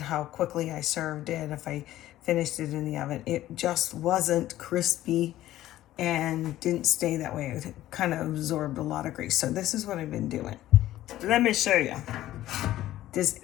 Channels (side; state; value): right; quieter; 14.3 dB